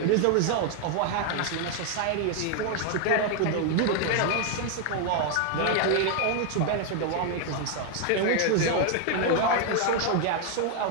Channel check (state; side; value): different; both; correlation 0.01